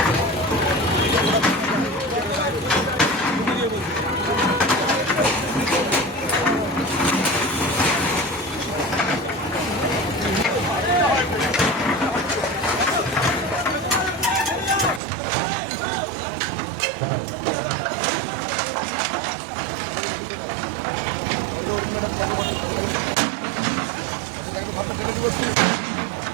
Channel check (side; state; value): left; drops out; at 15.0 s